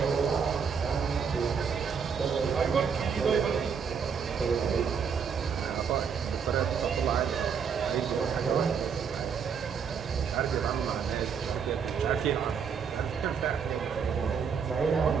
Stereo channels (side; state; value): left; quieter; 6.6 dB